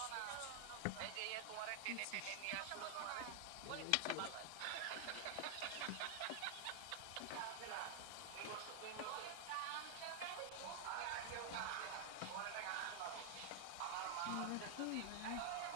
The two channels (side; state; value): both; different; correlation 0.00